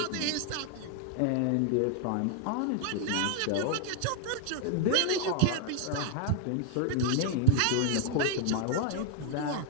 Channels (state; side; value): different; both; correlation 0.00